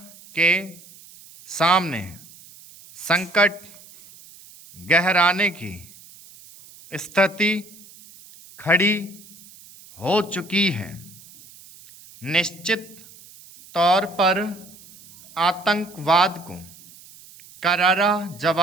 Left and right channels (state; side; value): noise; right; hiss, 22 dB below the sound